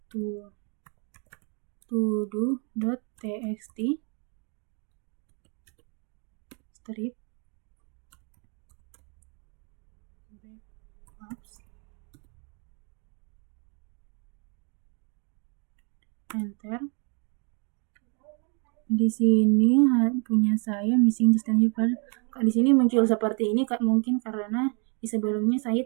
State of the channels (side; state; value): left; quieter; 36.4 dB